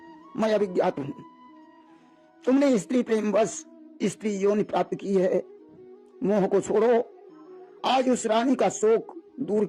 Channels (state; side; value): identical; both; correlation 1.00